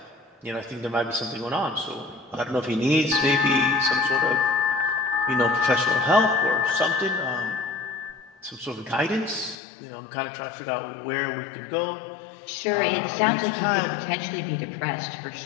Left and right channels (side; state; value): right; drops out; at 9.6 s